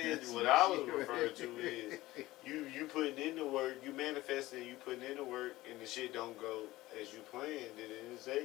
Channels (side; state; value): right; quieter; 17.8 dB